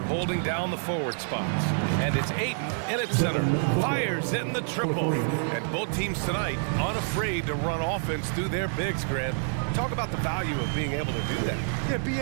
holding down the forward spots. And it's Ayton in at center. Fires in the triple. And both teams tonight unafraid to run offense through their bigs, Grant. Talk about the value of being able to do that. Yeah,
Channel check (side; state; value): left; silent; digital silence